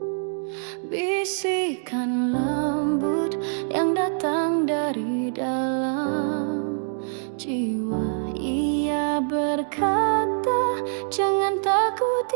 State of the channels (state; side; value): silent; left; digital silence